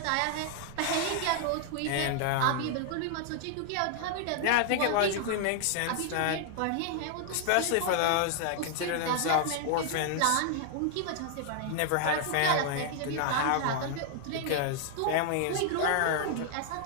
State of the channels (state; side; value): different; both; correlation 0.00